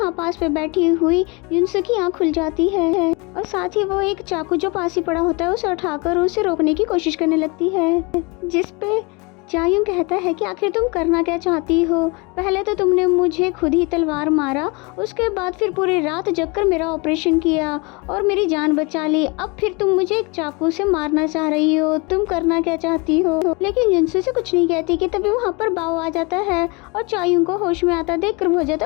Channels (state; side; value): quieter; right; 28.7 dB